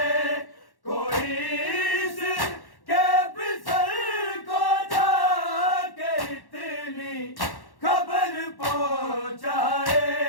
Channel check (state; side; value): late; right; 1.1 ms